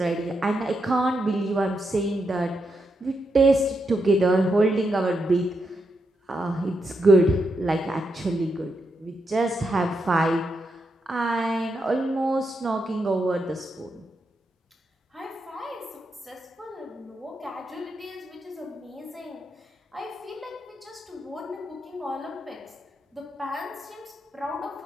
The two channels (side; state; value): both; normal; correlation 0.83